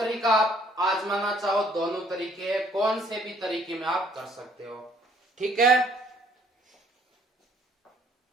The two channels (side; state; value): both; normal; correlation 0.61